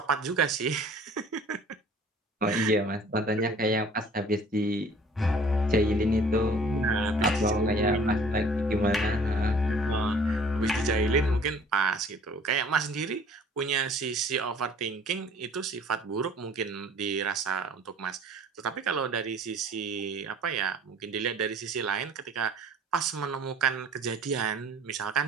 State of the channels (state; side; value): normal; both; correlation 0.51